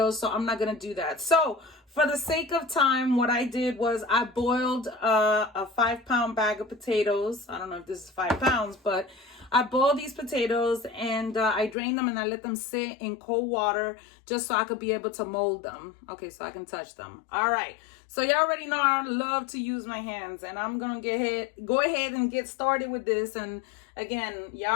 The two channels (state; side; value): drops out; right; at 11.8 s